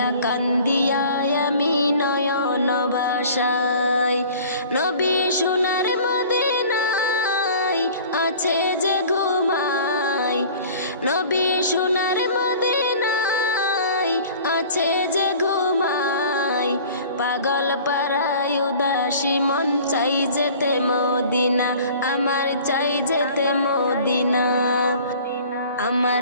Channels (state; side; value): inverted; both; correlation -0.46